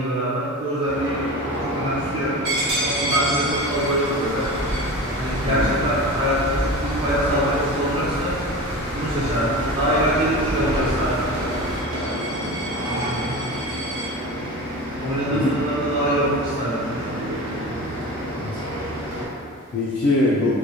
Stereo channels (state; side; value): normal; both; correlation 0.31